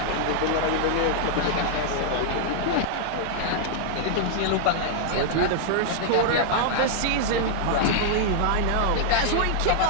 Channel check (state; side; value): different; both; correlation -0.01